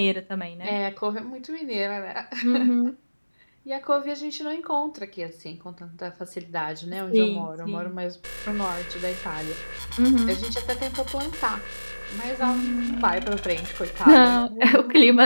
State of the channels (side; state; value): both; inverted; correlation -1.00